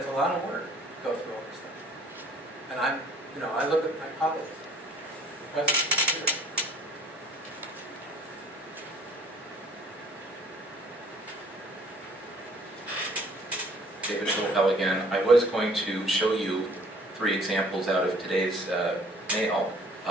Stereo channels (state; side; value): normal; both; correlation 0.56